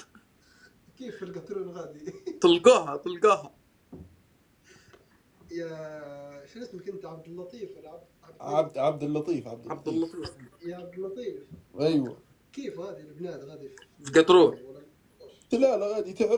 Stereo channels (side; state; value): both; identical; correlation 1.00